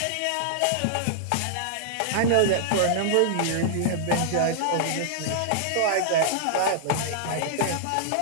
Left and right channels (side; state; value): both; different; correlation -0.01